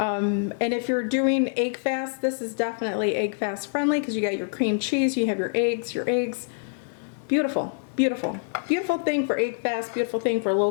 if you're doing egg fast, this is definitely egg fast friendly because you got your cream cheese, you have your eggs. Beautiful, beautiful, beautiful thing for egg fast, beautiful thing for low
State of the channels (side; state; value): right; silent; digital silence